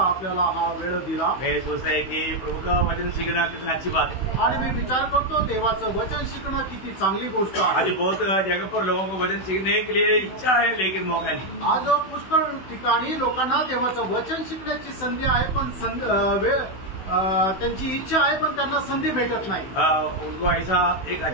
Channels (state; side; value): late; right; 16 ms